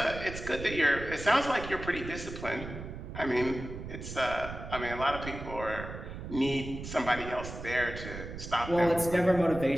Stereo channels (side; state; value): right; noise; rumble, 9 dB below the sound